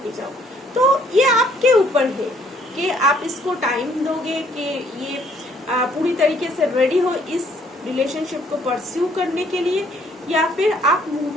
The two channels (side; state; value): both; normal; correlation 0.63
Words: जाओ। तो ये आपके ऊपर है कि आप इसको टाइम दोगे कि ये पूरी तरीके से रेडी हो इस रिलेशनशिप को परस्यू करने के लिए, या फिर आप